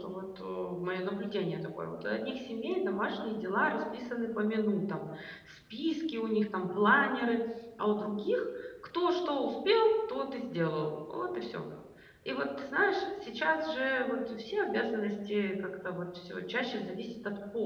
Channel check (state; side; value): identical; both; correlation 1.00